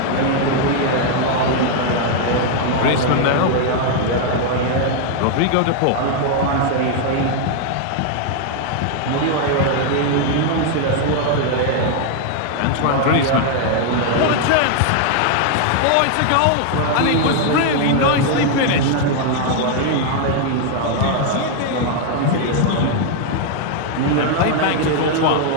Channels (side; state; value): both; different; correlation 0.00